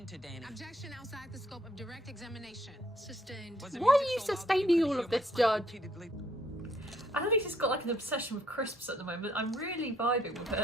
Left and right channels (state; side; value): normal; both; correlation 0.67